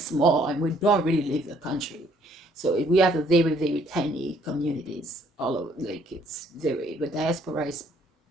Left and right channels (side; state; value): both; normal; correlation 0.64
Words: and we don't really leave the country. So we have a very, very tiny communities all over. Like the diaspora is